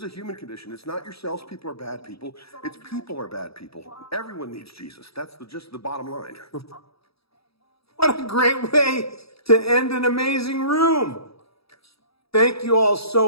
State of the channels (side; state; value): right; late; 0.77 ms